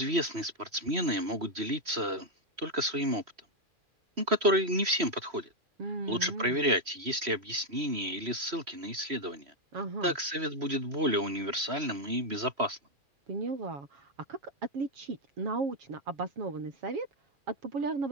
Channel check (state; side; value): late; left; 3.1 ms